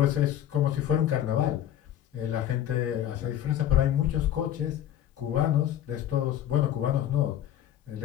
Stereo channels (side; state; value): right; quieter; 11.4 dB